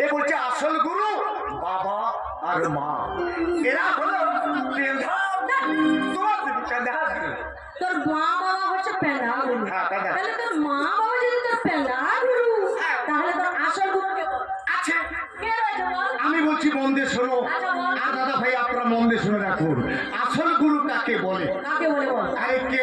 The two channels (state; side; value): identical; both; correlation 1.00